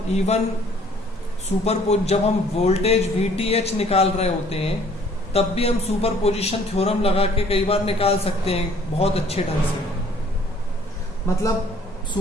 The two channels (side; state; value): both; normal; correlation 0.57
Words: इवन जब हम वोल्टेज VTH निकाल रहे होते हैं तब भी हम सुपरपोजिशन थ्योरम लगा के कई बार निकाल सकते हैं बहुत अच्छे ढंग से। मतलब